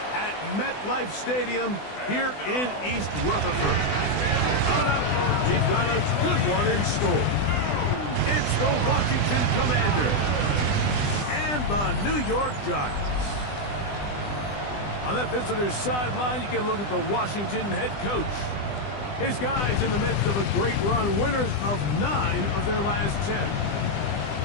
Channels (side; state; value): right; late; 20 ms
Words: at MetLife Stadium here in East Rutherford. Coming up, we've got a good one in store. It's the Washington Commanders and the New York Giants. On that visitor's sideline, you can look at the Washington head coach. His guys in the midst of a great run, winners of 9 of their last 10.